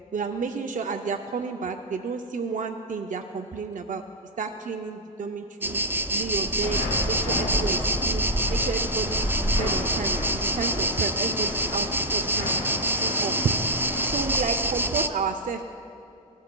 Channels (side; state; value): both; normal; correlation -0.04